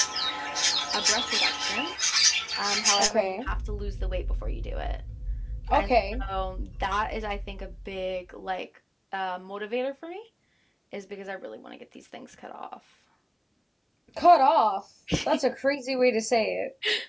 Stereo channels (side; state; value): both; identical; correlation 1.00